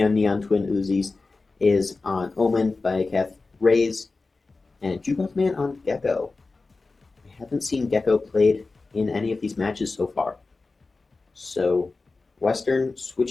on Neon Twin Uzis, is on Omen, Biocath, Raze, and Jukebox Man on Gecko. I haven't seen Gecko played in any of these matches so far. So Western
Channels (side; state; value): right; quieter; 3.7 dB